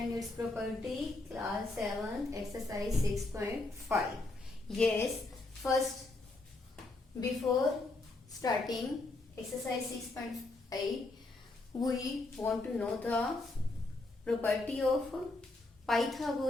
its property. Class 7, exercise 6.5. Yes, first, before starting exercise 6.5, we want to know the property of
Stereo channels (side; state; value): right; quieter; 3.1 dB